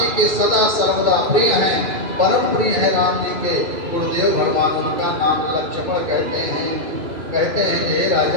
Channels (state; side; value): late; left; 2.2 ms